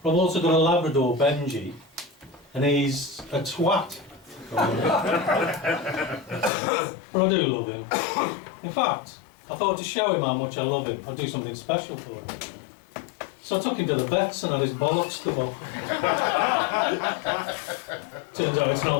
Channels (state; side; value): drops out; right; at 6.5 s